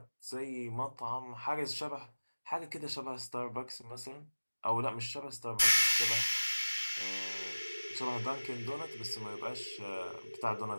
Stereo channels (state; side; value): inverted; both; correlation -1.00